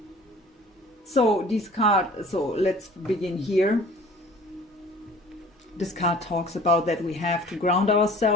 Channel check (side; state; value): both; normal; correlation 0.47